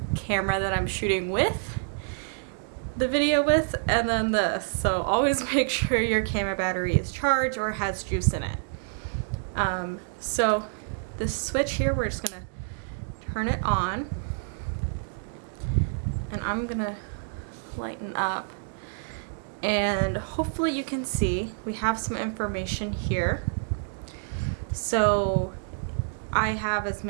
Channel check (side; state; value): left; silent; digital silence